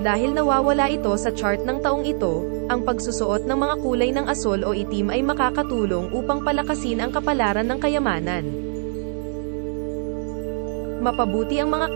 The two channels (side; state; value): left; silent; 64 dB below the other